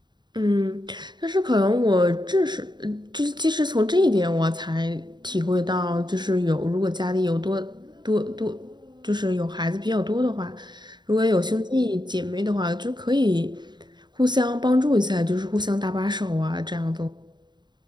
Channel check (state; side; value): late; left; 0.21 ms